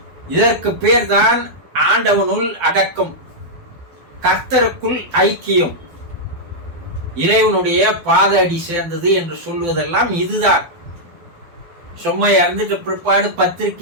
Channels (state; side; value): late; left; 12 ms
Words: இதற்கு பெயர்தான் ஆண்டவனுள் அடக்கம், கர்த்தருக்குள் ஐக்கியம், இறைவனுடைய பாத அடி சேர்ந்தது என்று சொல்வதெல்லாம் இதுதான். சும்மா இறந்துட்டு பிற்பாடு